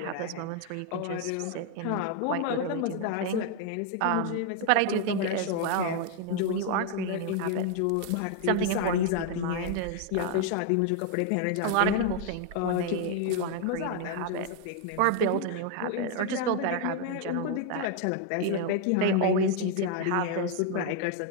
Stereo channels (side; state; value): both; different; correlation 0.00